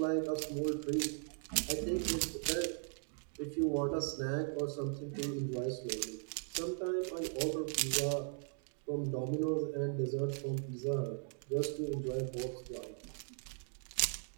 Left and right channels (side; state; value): left; silent; 52 dB below the other